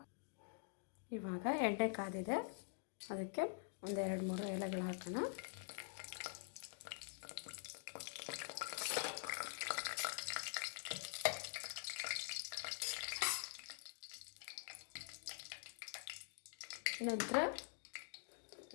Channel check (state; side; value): silent; right; digital silence